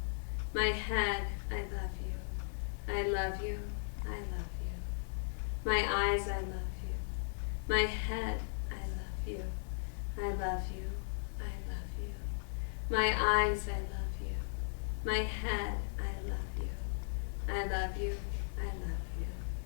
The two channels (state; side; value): silent; right; 53 dB below the other